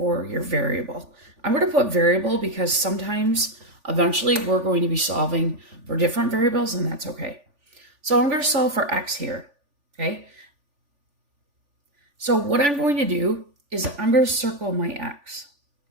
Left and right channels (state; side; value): late; left; 3.5 ms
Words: your variable. I'm going to put variable because sometimes, eventually, we're going to be solving for different variables, and that's okay. So I'm going to solve for x here, okay? So what I'm going to do is I'm going to circle my x,